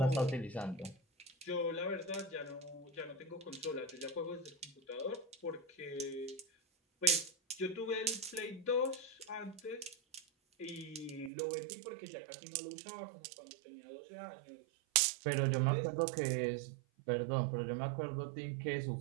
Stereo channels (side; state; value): left; drops out; at 11.3 s